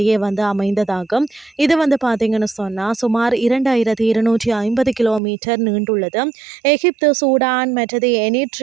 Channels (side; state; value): left; drops out; at 5.2 s